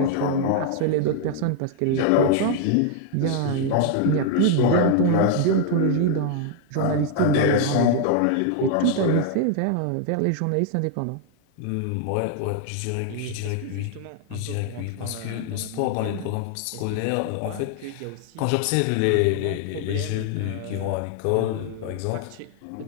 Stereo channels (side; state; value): both; different; correlation 0.00